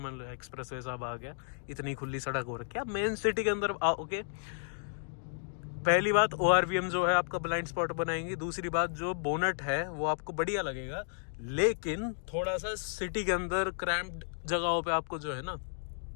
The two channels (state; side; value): silent; right; digital silence